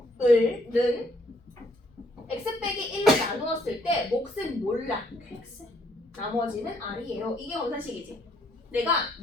는 x 빼기 1로 나누었을 때 몫은 몰라. x. 나머지는 r이에요. 이게 검산식이지. 내가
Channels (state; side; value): normal; both; correlation 0.68